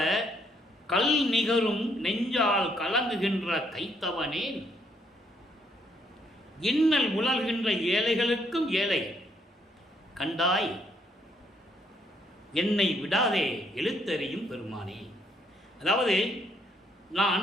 கல் நிகரும் நெஞ்சால் கலங்குகின்ற கைத்தவனேன், இன்னல் உலர்கின்ற ஏழைகளுக்கும் ஏழை கண்டாய், என்னை விடாதே எழுத்தறியும் பெருமானே. அதாவது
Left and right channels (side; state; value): both; normal; correlation 0.71